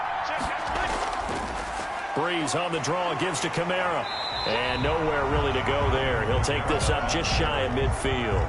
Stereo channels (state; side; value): identical; both; correlation 1.00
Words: Breeze on the draw, gives to Kamara. And nowhere really to go there. He'll take this up just shy of